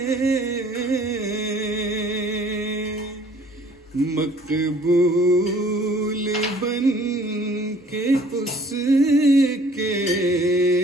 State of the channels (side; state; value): both; normal; correlation 0.55